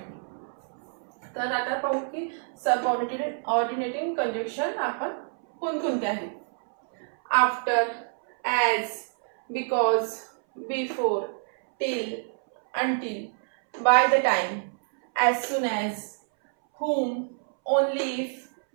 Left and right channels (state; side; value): silent; left; 60 dB below the other